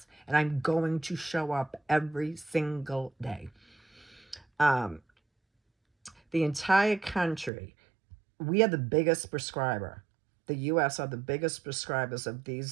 And I'm going to show up every single day. The entire country, we are the biggest prescriber. The U.S. are the biggest prescribers of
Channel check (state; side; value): drops out; left; at 7.5 s